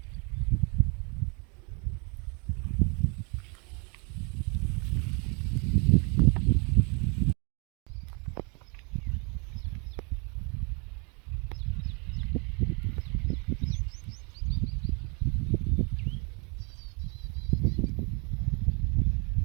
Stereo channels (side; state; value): left; quieter; 33.7 dB